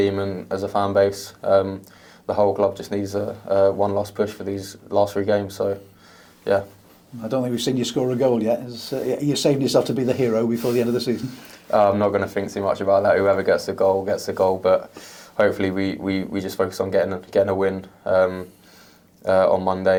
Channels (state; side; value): identical; both; correlation 1.00